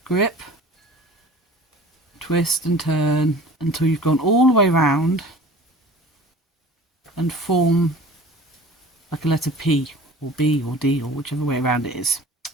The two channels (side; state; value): both; normal; correlation 0.42